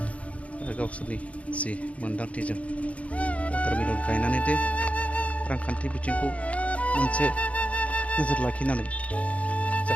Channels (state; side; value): late; right; 0.065 ms